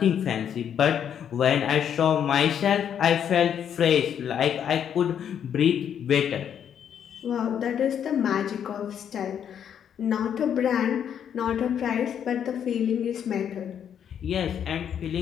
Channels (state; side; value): quieter; right; 8.8 dB